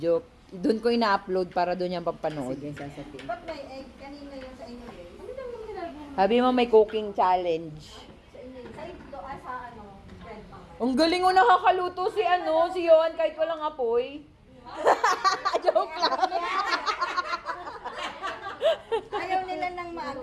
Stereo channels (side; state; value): both; identical; correlation 1.00